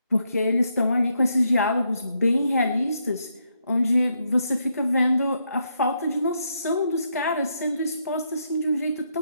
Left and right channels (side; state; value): both; inverted; correlation -0.78